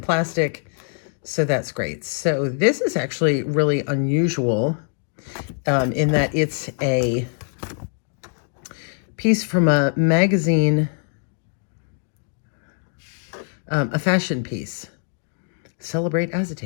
plastic. So that's great. So this is actually really unusual in that it's a piece from a magazine, a fashion piece. Celebrate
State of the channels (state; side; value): silent; right; 57 dB below the other